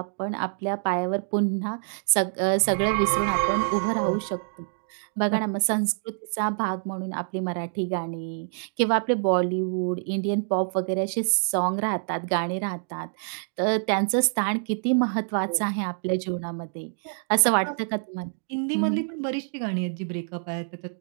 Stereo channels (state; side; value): silent; left; digital silence